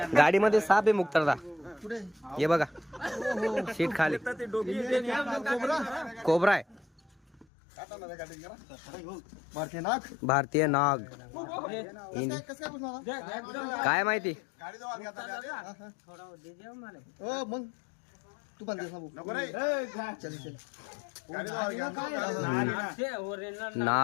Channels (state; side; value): drops out; right; at 7.5 s